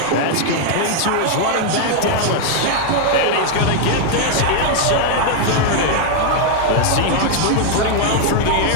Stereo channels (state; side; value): different; both; correlation 0.00